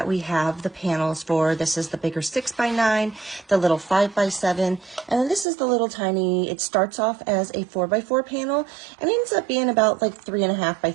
we have the panels for. This is the bigger 6x9, the little 5x7, and then this is the little tiny, it starts off as a 4x4 panel and ends up being about like 3.5 by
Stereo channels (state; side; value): drops out; left; at 5.5 s